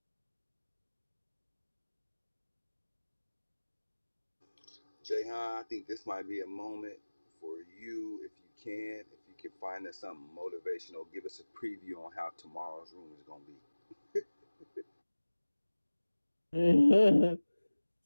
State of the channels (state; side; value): inverted; both; correlation -1.00